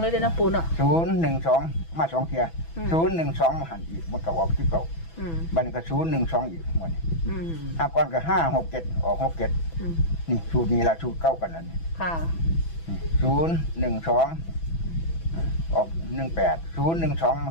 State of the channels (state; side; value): late; right; 6.0 ms